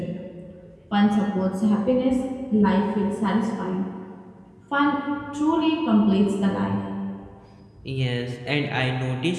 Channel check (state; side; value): identical; both; correlation 1.00